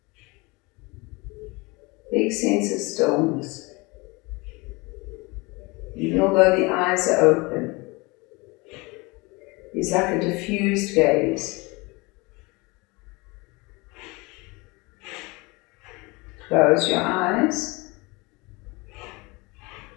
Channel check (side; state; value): right; quieter; 25.4 dB